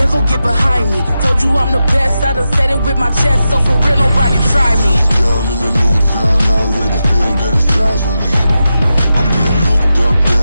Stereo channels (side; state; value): both; inverted; correlation -0.90